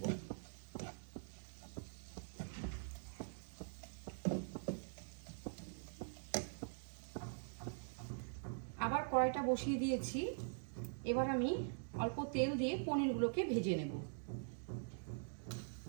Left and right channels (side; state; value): left; silent; digital silence